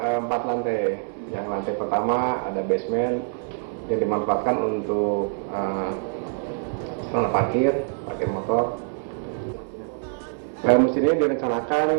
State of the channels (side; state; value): left; silent; 62 dB below the other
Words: 4 lantai. Yang lantai pertama ada basement yang dimanfaatkan untuk sarana parkir motor. Masjid ini direncanakan